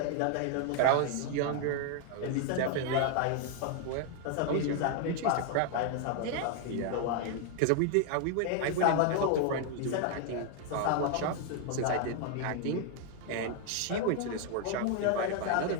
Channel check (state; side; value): different; both; correlation 0.00